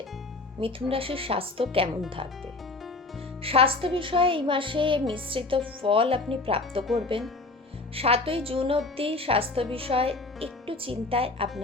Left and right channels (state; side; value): quieter; right; 3.4 dB